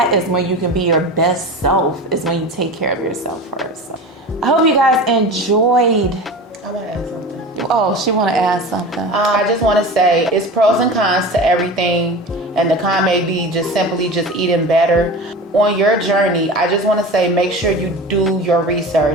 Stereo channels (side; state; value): both; normal; correlation 0.32